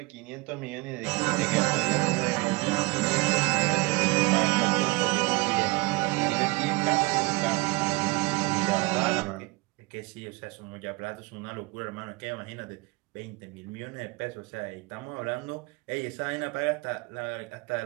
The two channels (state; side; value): quieter; left; 24.6 dB